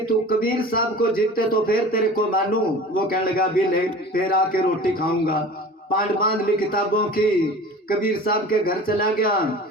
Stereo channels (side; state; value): both; normal; correlation 0.39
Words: तू कबीर साहब को जीतते तो फिर तेरे को मानू। वो कहने लगा भी ले, फिर आके रोटी खाऊंगा। पांड बांध ली किताबों की, कबीर साहब के घर चला गया